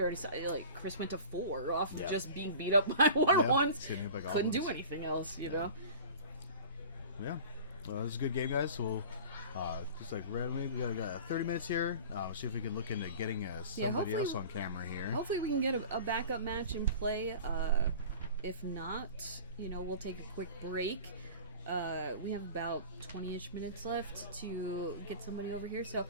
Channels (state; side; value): inverted; both; correlation -0.39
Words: saw, like, Chris went to 4 off of just being beat up by 1/1s. Couldn't do anything else, you know? Yeah. Well, it was a good game, guys. So we'll just like randomly, we got 30 minutes here. See if we can look into getting somebody else on camera here. Hopefully we can get a backup match in play. If not, you know, we'll take a quick break. We have about 20-ish minutes left to get somebody over here, so